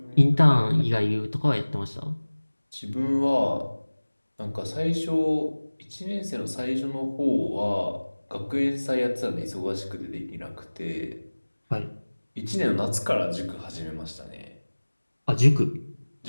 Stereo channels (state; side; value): inverted; both; correlation -1.00